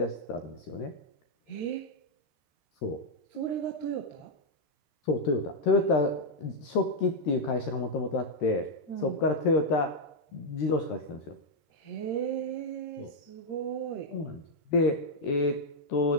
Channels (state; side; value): late; right; 13 ms